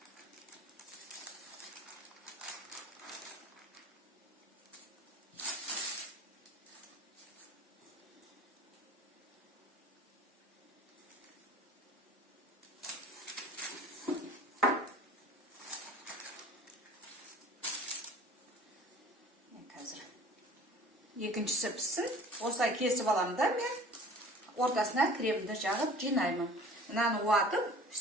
екіншісі піссін. Осылай кесіп аламын да мен ортасына кремді жағып жинаймын. Мынаны уатып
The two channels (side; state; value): both; normal; correlation 0.46